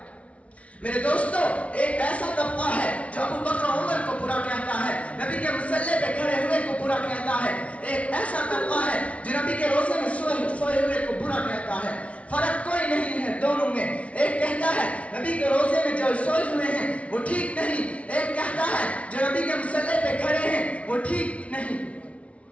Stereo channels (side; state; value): right; late; 0.064 ms